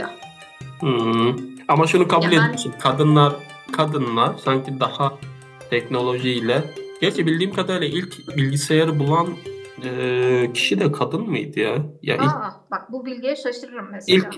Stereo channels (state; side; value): identical; both; correlation 1.00